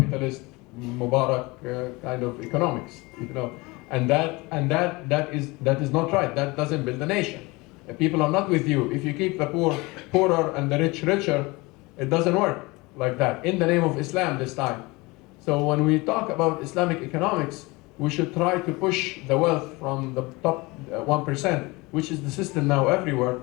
Mubarak kind of economics, you know, and that is not right. That doesn't build a nation. People are not with you. If you keep the poor poorer and the rich richer, it doesn't work like that. In the name of Islam this time. So when we talk about Islamic economics, we should try to push the wealth from the top 1%, which is the system now everywhere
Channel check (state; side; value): quieter; right; 23.9 dB